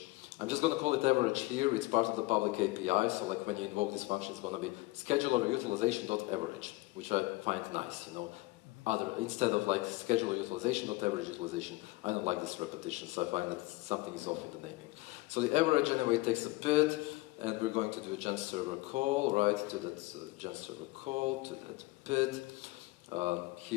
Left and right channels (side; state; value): right; quieter; 21.5 dB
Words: I'm just going to call it average here. It's part of the public API, so like when you invoke this function, it's going to be scheduler utilization.average, which I find nice, you know. Instead of like scheduler utilization.average utilization, I don't like this repetition, so I find that something is off in the naming. So the average anyway takes a PID, and we're going to do a gen server call, right, to that gen server call, to that PID.